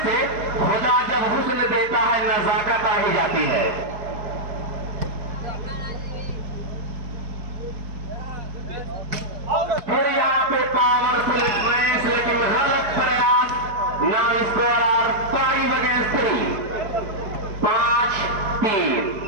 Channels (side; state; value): left; late; 4.7 ms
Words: से, खुदा जब हुस्न देता है नजाकत आ ही जाती है। फिर यहाँ पे पावरफुल मैच लेकिन गलत प्रयास। Now score are 5 against 3, 5-3।